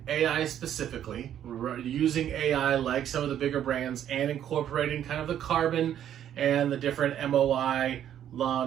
AI specifically, using AI like some of the bigger brands and incorporating kind of the carbon and the different MOI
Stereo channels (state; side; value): quieter; left; 10.4 dB